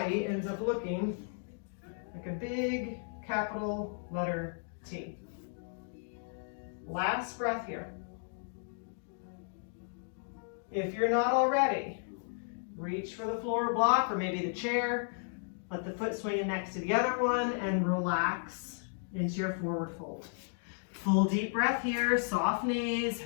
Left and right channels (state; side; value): silent; right; digital silence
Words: ends up looking like a big capital letter T. Last breath here. If you're not already, reach for the floor block or maybe the chair. Let the foot swing in next to the other one and relax into your forward fold. Full deep breath here, soft knees,